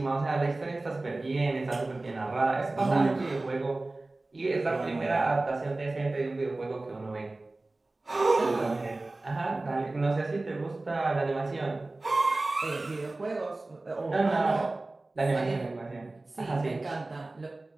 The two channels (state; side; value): quieter; left; 3.0 dB